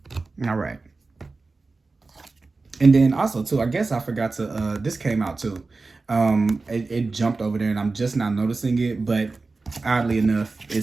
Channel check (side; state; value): left; quieter; 3.8 dB